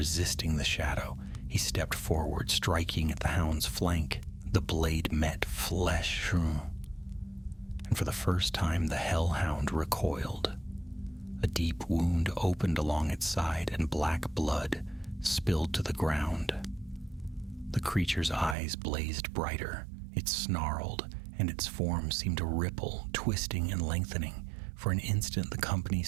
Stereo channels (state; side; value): drops out; left; at 18.6 s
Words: the shadow. He stepped forward, striking at the hound's flank. The blade met flesh, and for the first time the Hellhound recoiled. A deep wound opened along its side, and black blood spilled to the ground. The creature's eyes blazed brighter. It snarled, and its form seemed to ripple, twisting and lengthening. For an instant the company